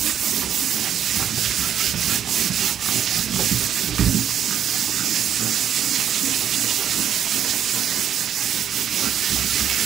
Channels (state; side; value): quieter; left; 9.5 dB